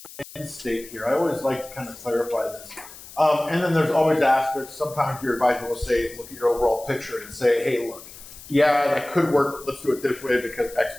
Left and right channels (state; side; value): noise; left; hiss, 17 dB below the sound